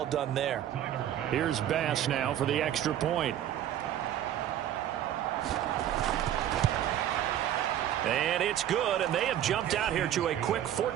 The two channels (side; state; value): left; quieter; 11.2 dB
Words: done there. Here's Bass now for the extra point. And it's good, and they have jumped out here to a quick